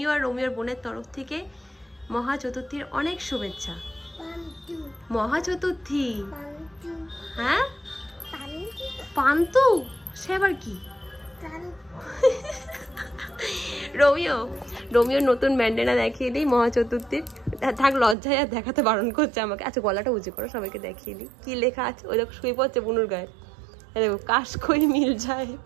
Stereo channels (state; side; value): drops out; left; at 18.2 s